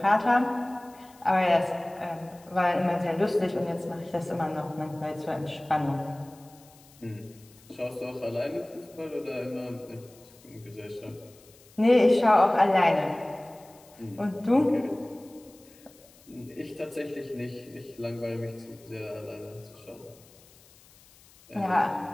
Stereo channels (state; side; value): noise; left; hiss, 26 dB below the sound